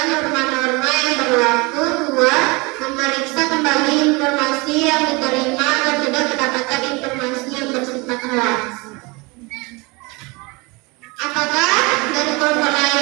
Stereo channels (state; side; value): quieter; left; 26.4 dB